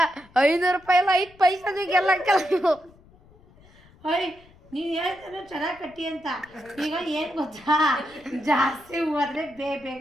500 ರೂಪಾಯಿ ಅಲ್ಲ, 5 ಪೈಸದು ಎಲ್ಲ ಕೆಲವು. ನೀನು ಹೇಳ್ತಾನೆ ಚೆನ್ನಾಗಿ ಕಟ್ಟಿ ಅಂತ. ಈಗ ಏನು ಗೊತ್ತಾ, ಜಾಸ್ತಿ ಹೂ ಆದರೆ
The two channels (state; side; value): noise; left; rumble, 27 dB below the sound